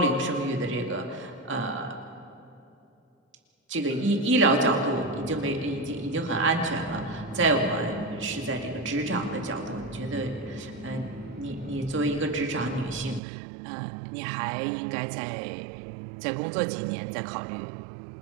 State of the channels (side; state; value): left; drops out; at 13.2 s